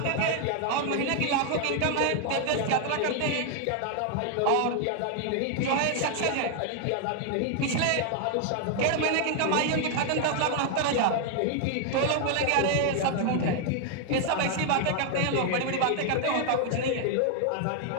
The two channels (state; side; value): different; both; correlation 0.00